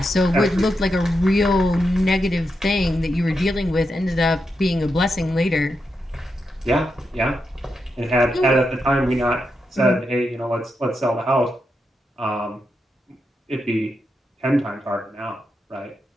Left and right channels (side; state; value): both; normal; correlation 0.85